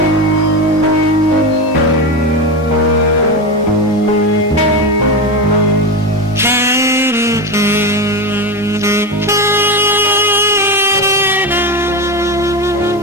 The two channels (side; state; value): both; normal; correlation 0.18